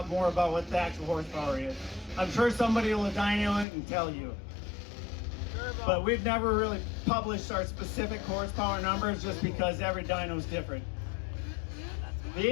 more about what the actual horsepower is. I'm sure somebody will dyno it and tell you. But we've never really published our specific horsepower numbers just because every dyno is different. The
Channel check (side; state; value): right; drops out; at 3.7 s